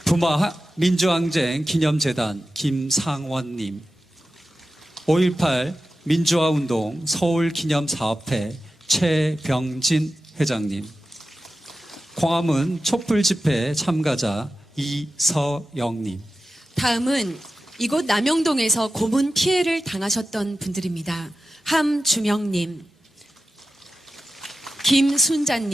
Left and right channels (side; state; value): both; normal; correlation 0.92